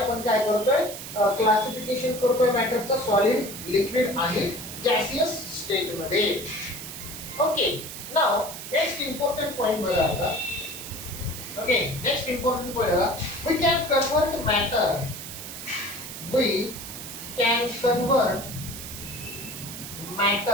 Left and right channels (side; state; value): right; noise; hiss, 10 dB below the sound